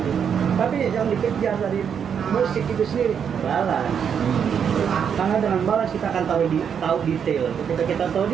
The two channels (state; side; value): quieter; left; 7.6 dB